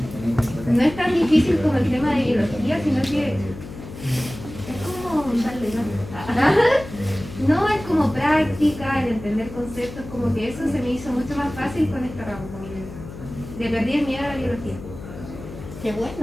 no es tan difícil como el tema de biología, sino que es como no es como práctica, el entender conceptos, como que eso se me hizo mucho más fácil con este ramo, como que le perdí el miedo a la biología. Qué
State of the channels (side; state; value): left; noise; hum, 13 dB below the sound